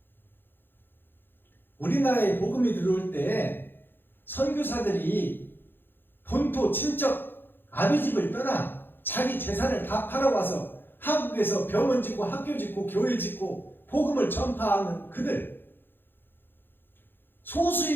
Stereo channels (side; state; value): right; late; 0.10 ms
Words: 우리나라에 복음이 들어올 때 선교사들이 본토 친척 아비집을 떠나 자기 재산을 다 팔아와서 한국에서 병원 짓고 학교 짓고 교회 짓고 복음을 전파하는 그들,